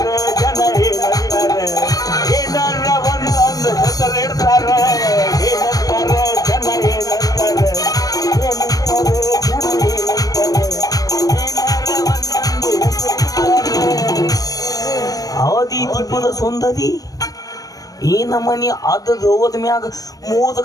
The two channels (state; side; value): late; right; 0.18 ms